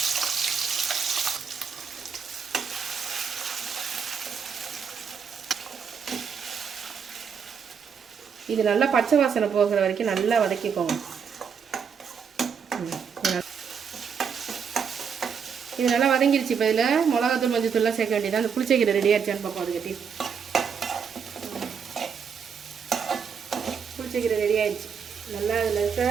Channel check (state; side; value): quieter; left; 6.7 dB